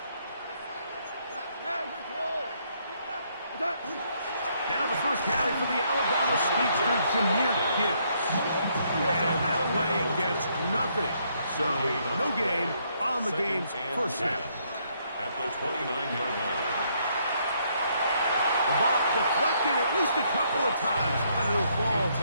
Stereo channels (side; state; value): both; inverted; correlation -0.71